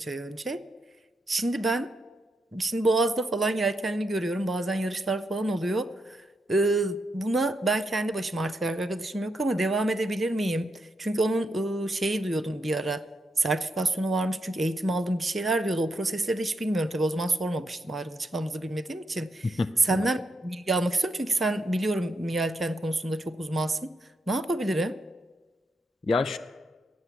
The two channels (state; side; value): normal; both; correlation 0.82